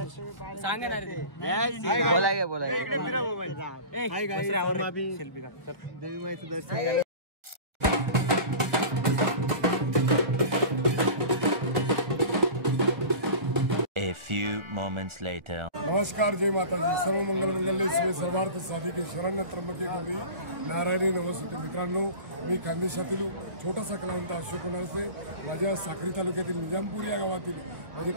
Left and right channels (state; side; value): late; left; 1.6 ms